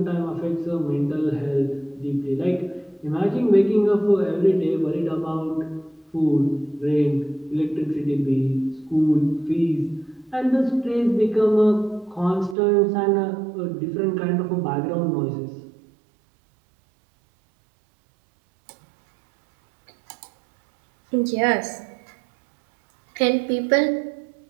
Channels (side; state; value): left; drops out; at 12.6 s